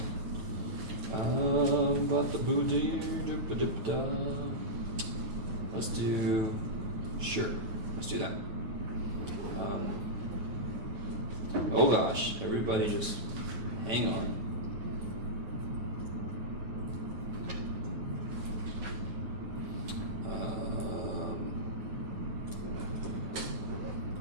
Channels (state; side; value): late; left; 9.0 ms